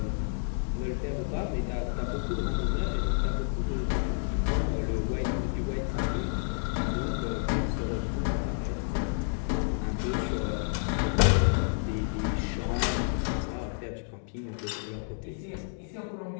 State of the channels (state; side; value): silent; right; 58 dB below the other